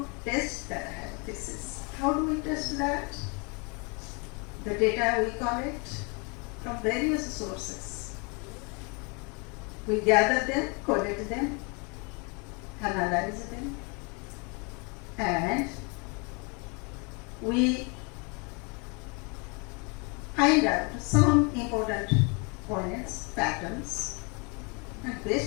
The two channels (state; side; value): quieter; right; 32.3 dB